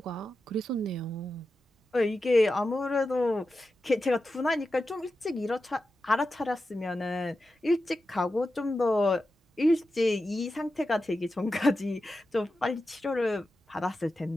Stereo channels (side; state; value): both; normal; correlation 0.91